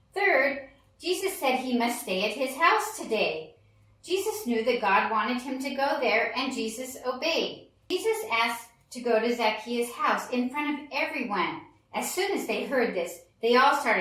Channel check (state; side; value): identical; both; correlation 1.00